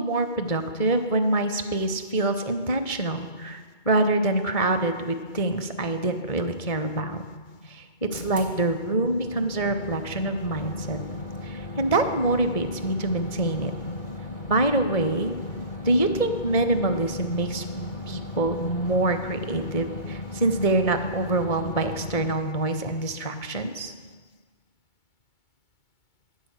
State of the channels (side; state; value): right; late; 2.2 ms